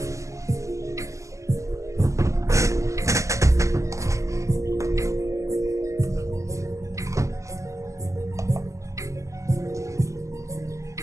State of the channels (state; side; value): late; left; 0.15 ms